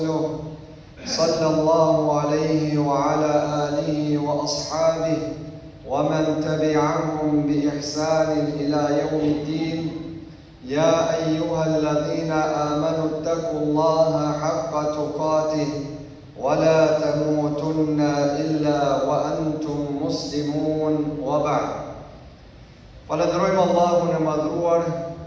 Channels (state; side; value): identical; both; correlation 1.00